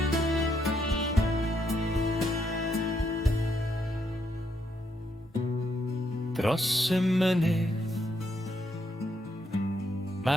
Dros y mynydd,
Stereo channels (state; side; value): normal; both; correlation 0.76